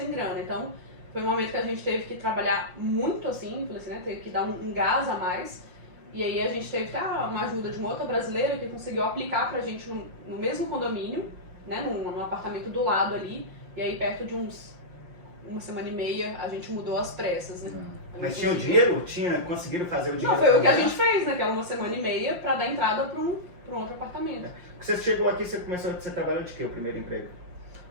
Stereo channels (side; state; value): left; late; 5.6 ms